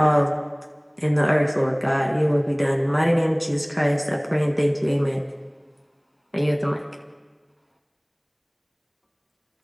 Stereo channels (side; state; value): both; identical; correlation 1.00